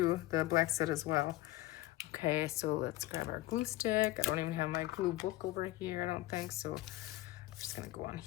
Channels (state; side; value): quieter; right; 17.1 dB